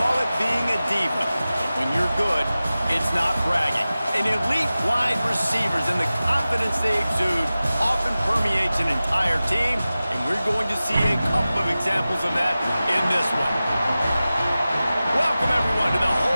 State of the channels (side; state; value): both; inverted; correlation -0.96